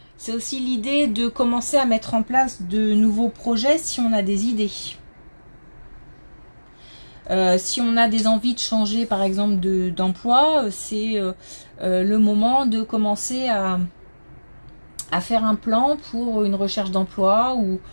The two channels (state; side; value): inverted; both; correlation -1.00